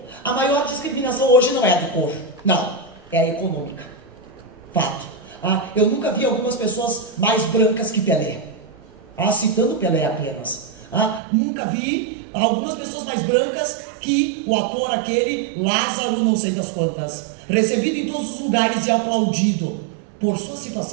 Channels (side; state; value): left; drops out; at 11.2 s